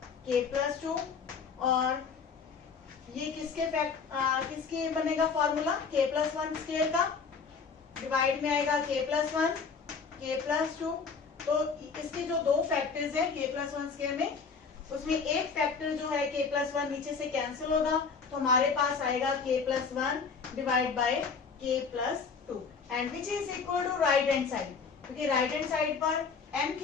k+2, और ये किसके बनेगा फॉर्मूला, k+1 स्क्वायर का, डिवाइड में आएगा k+1 k+2। तो इसके जो दो फैक्टर्स हैं k+1 स्क्वायर में, उसमें एक फैक्टर जो है k+1 नीचे से कैंसिल होगा, तो हमारे पास आएगा k+1 divide by k+2 and which is equal to right hand side, क्योंकि राइट हैंड साइड पर m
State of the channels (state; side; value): quieter; right; 5.4 dB